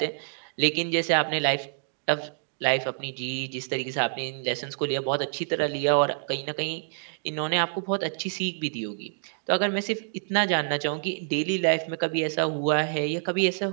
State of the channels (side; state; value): left; silent; digital silence